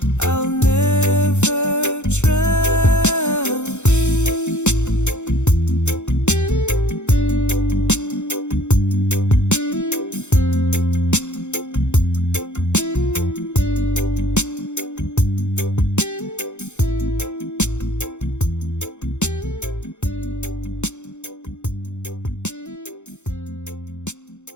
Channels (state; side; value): late; right; 0.83 ms